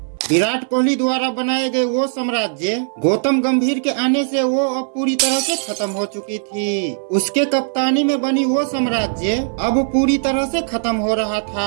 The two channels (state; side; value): silent; left; 58 dB below the other